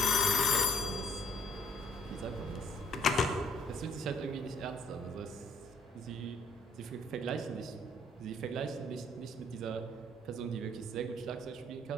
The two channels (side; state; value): both; normal; correlation 0.61